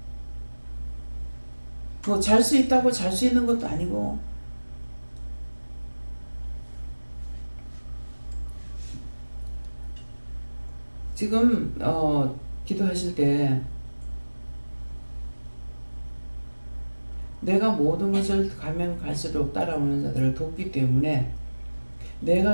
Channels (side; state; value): both; inverted; correlation -1.00